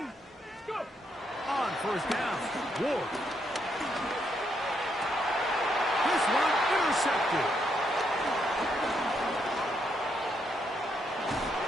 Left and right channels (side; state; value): both; normal; correlation 0.77